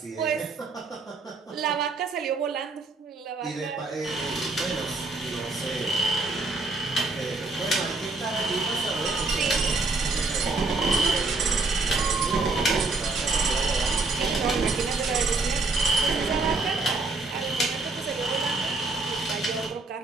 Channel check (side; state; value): left; quieter; 3.5 dB